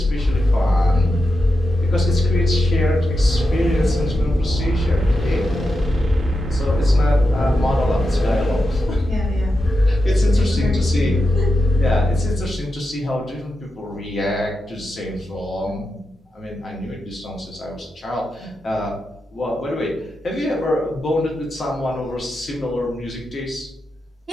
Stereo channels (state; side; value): normal; both; correlation 0.88